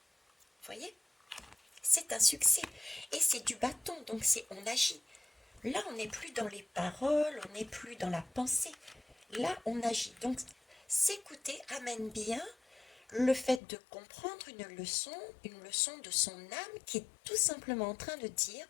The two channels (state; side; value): drops out; right; at 13.6 s